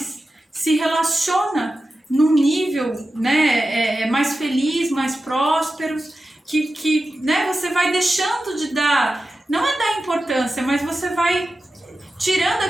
se relaciona num nível, né, mais feliz, mais próspero, que né, você vai deixando de dar, não é dar importância, mas você vai tirando a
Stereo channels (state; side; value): normal; both; correlation 0.93